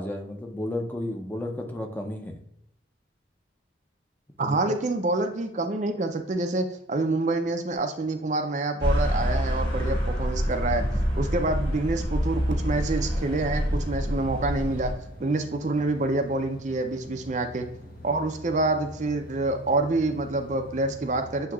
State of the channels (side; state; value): both; normal; correlation 0.49